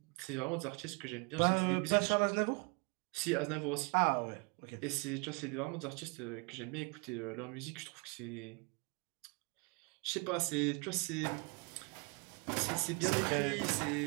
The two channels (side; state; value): left; quieter; 31.0 dB